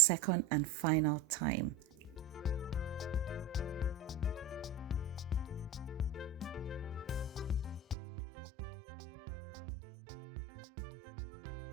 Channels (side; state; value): left; drops out; at 8.0 s